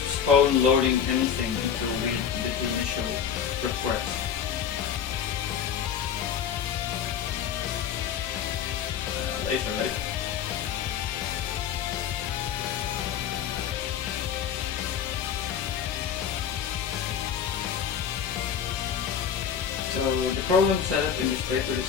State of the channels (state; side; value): quieter; right; 8.1 dB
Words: postpone loading anything until we did the initial request. Later. So the problem setup in this paper